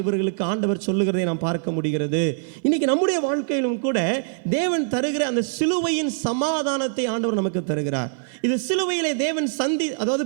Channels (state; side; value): silent; left; 60 dB below the other